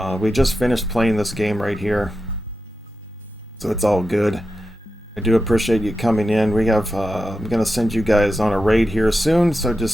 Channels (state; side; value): normal; both; correlation 0.90